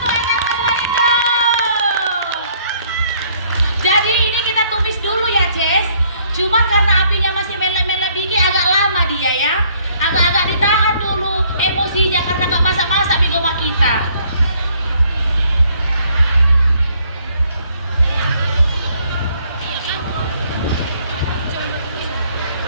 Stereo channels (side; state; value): both; inverted; correlation -0.63